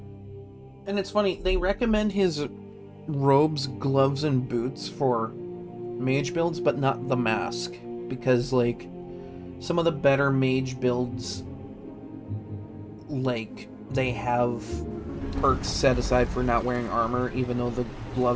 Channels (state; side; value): identical; both; correlation 1.00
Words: And it's funny, they recommend his robes, gloves, and boots for mage builds, but not the mask. Because, like, some of the better mage builds, like, they have perks set aside for not wearing armor, even though the